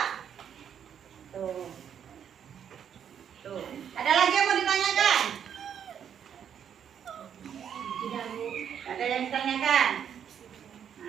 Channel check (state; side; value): quieter; left; 8.6 dB